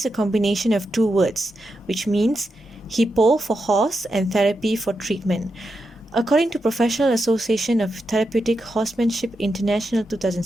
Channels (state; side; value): normal; both; correlation 0.86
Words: a combination of two words, which means hippo for horse and therapy for treatment. According to Professional Association of Therapeutic Horsemanship International